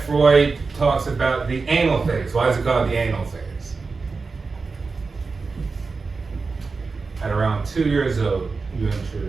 Freud talks about the anal phase. Why is it called the anal phase? At around 2 years old, you enter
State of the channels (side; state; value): left; quieter; 4.3 dB